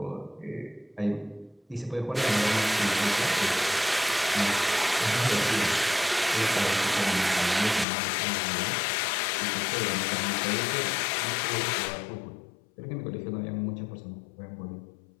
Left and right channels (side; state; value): right; drops out; at 7.9 s